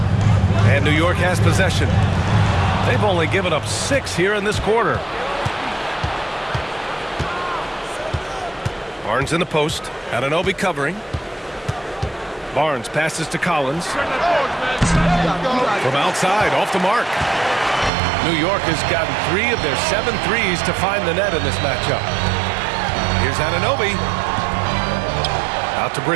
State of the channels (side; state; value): left; drops out; at 17.9 s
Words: And New York has possession. They've only given up 6 here in this quarter. Barnes in the post. Anunoby covering. Barnes passes to Collins. From outside, off the mark. New York has gotten 3 of their 7 threes to find the net in this matchup. Here's Anunoby. Out to